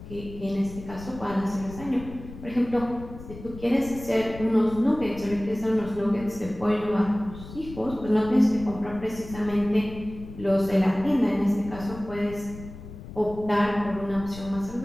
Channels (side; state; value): left; noise; rumble, 14 dB below the sound